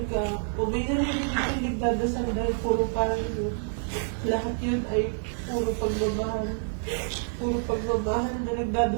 ka, o may narinig ka yung nagdadasal dahil puro parang yun. Lahat yun ay puro pagmamahal. Puro pagmamahal na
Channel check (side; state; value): left; silent; 58 dB below the other